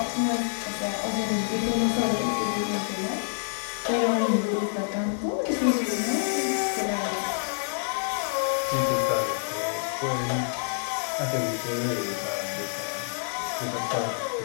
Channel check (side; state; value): right; silent; digital silence